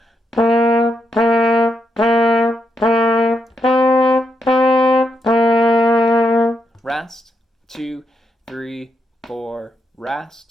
Rest, 2, 3, 4,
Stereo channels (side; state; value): both; normal; correlation 0.80